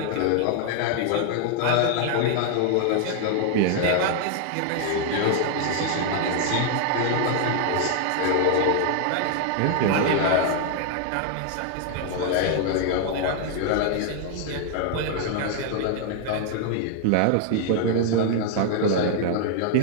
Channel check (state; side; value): different; both; correlation 0.00